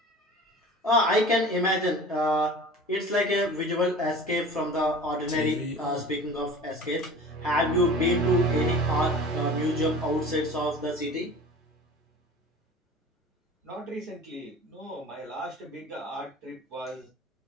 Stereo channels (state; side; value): normal; both; correlation 0.40